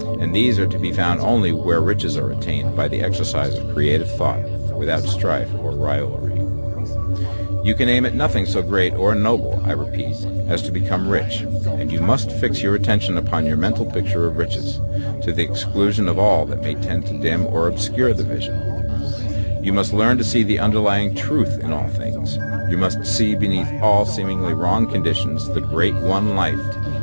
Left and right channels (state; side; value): inverted; both; correlation -1.00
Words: And these are to be found only where riches are attained by the exercise of creative thought, without strife or rivalry. You can aim at nothing so great or noble, I repeat, as to become rich, and you must fix your attention upon your mental picture of riches, to the exclusion of all that may tend to dim or obscure the vision. You must learn to see the underlying truth in all things. You must see beneath all seemingly wrong conditions the great one life,